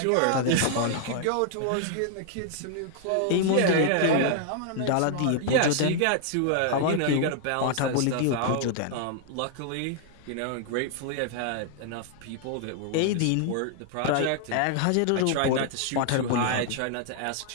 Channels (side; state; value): both; different; correlation 0.00